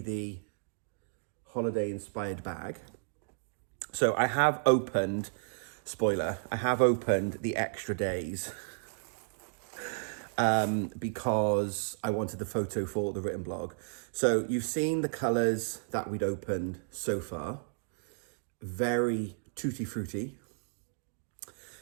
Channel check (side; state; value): left; silent; digital silence